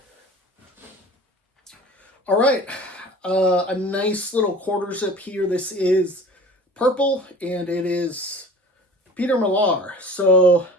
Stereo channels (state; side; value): normal; both; correlation 0.42